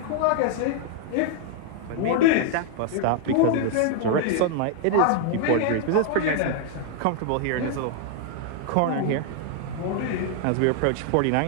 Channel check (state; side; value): different; both; correlation 0.00